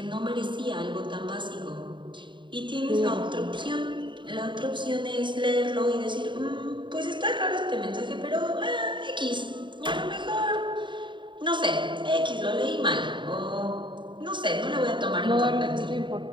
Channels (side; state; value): left; late; 0.23 ms